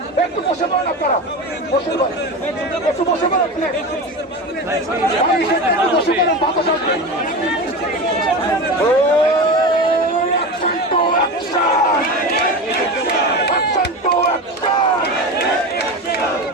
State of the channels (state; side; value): normal; both; correlation 0.25